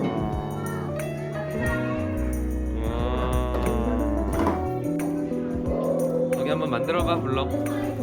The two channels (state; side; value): identical; both; correlation 1.00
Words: 여기 한번 만들어봐. 불러.